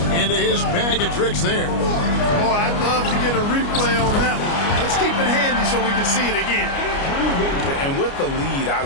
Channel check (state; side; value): late; right; 29 ms